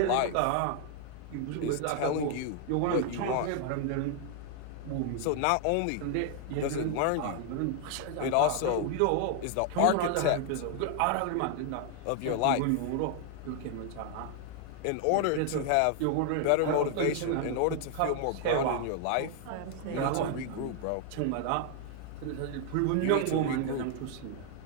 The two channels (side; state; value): both; different; correlation 0.00